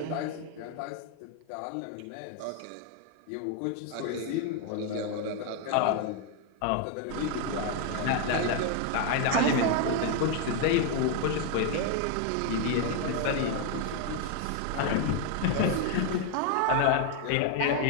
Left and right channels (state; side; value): different; both; correlation 0.00